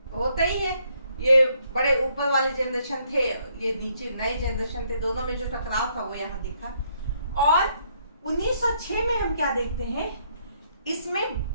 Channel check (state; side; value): inverted; both; correlation -0.70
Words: होता ही है, ये बड़े ऊपर वाले जनरेशन थे, ये नीचे नए जनरेशन थे, दोनों में जो टकराव था वो यहाँ दिखा। और 1906 में हम क्या देखते हैं, इसमें